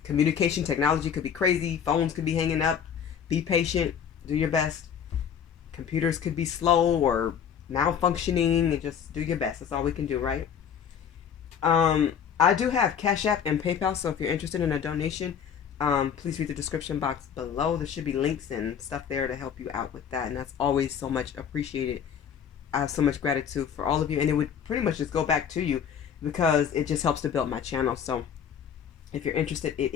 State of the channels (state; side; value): quieter; right; 8.0 dB